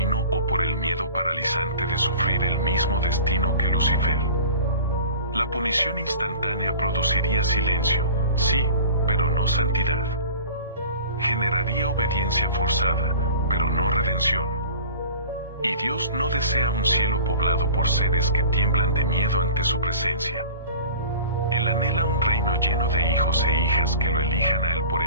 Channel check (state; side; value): inverted; both; correlation -0.40